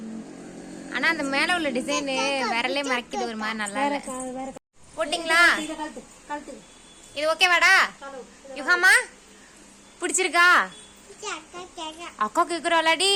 ஆனா அந்த மேல உள்ள டிசைன் விரலே மறைக்குது, ஒரு மாதிரி நல்லா இல்ல. போட்டிங்களா? இது ஓகேவாடா? யுகாமா பிடிச்சிருக்கா? அக்கா கேக்குறாளாடி.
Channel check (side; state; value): both; identical; correlation 1.00